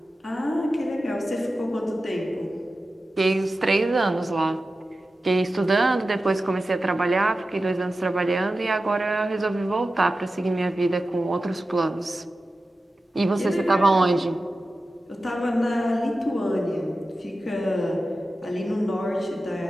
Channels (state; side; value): normal; both; correlation 0.94